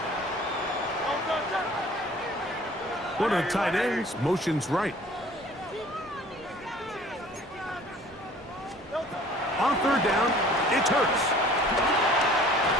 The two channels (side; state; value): both; normal; correlation 0.50